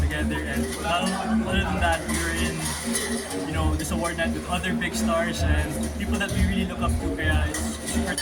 together, and other than that, we were in this award night with other big stars and people that we really look up to, kaya it's super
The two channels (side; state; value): both; identical; correlation 1.00